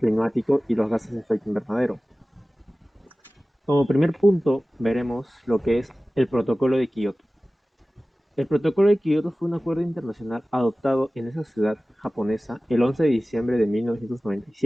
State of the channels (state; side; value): normal; both; correlation 0.97